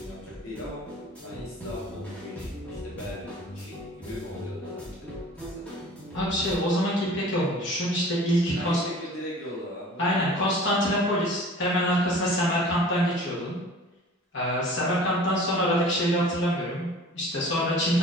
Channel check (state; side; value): normal; both; correlation 0.45